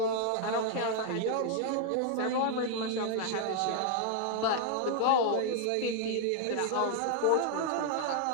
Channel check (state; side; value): different; both; correlation 0.00